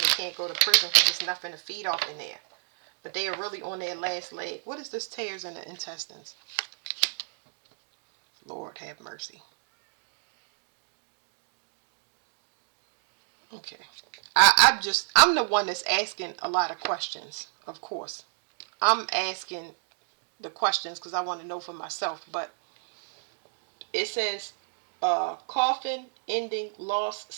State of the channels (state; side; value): silent; left; digital silence